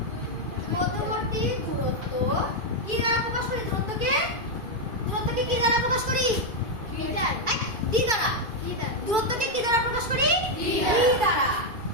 কি দ্বারা প্রকাশ করি? দূরত্বকে কি দ্বারা প্রকাশ করি? মিটার। ডি দ্বারা। দূরত্বকে কি দ্বারা প্রকাশ করি? ডি দ্বারা।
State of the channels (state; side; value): late; left; 2.3 ms